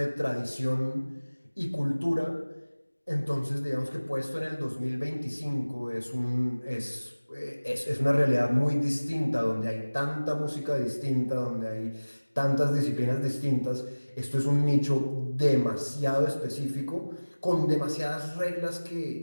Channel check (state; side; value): inverted; both; correlation -1.00